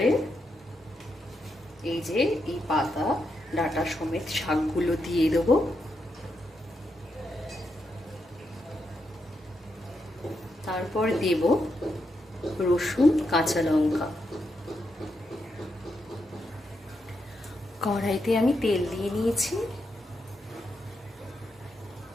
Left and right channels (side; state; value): both; normal; correlation 0.83